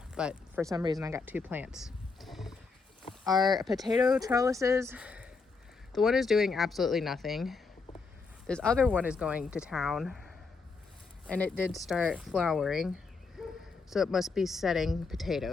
but for some reason I got 2 plants. Our potato trellises, the one is doing absolutely nothing. This other one is going to town, and it did start flowering, so it must be setting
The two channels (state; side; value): quieter; right; 4.5 dB